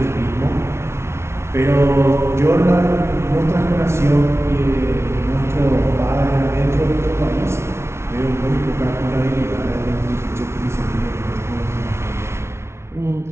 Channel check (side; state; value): left; late; 0.13 ms